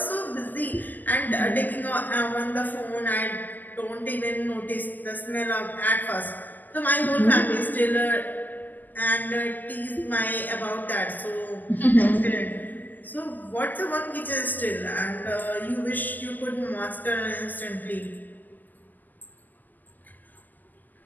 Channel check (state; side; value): late; right; 0.084 ms